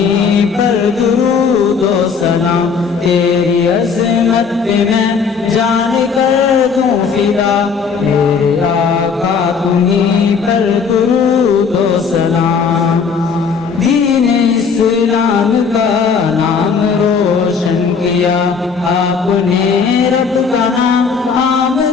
پر درود و سلام، تیری عظمت پہ میں جان کر دوں فدا، میرے آقا تمہیں پر درود و سلام۔ دین اسلام کا نام روشن کیا آپ نے، رب کا نام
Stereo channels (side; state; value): right; quieter; 5.7 dB